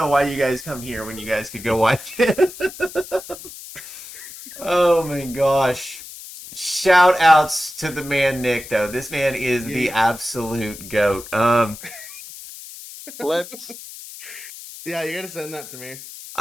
why you guys come here when you guys could go watch it. Oh my gosh. Shout outs to the man Nick though. This man is the absolute goat. Flips. Yeah, you gotta send that to me.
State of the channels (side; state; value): left; noise; hiss, 14 dB below the sound